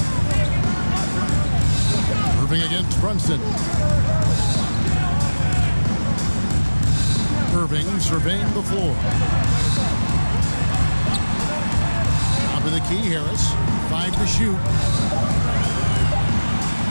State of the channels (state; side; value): inverted; both; correlation -1.00